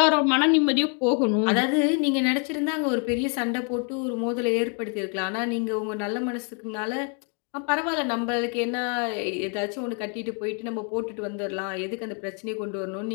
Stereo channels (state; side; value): quieter; right; 39.7 dB